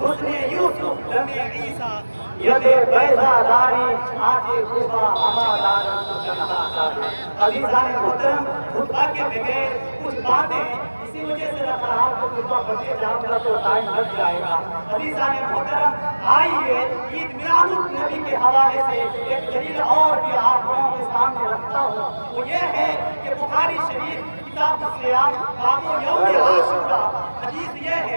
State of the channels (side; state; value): both; inverted; correlation -1.00